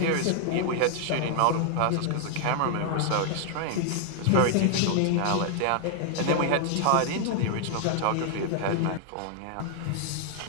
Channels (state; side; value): different; both; correlation 0.00